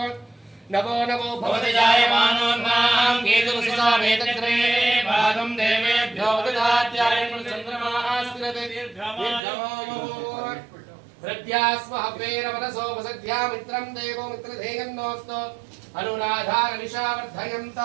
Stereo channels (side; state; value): left; drops out; at 9.4 s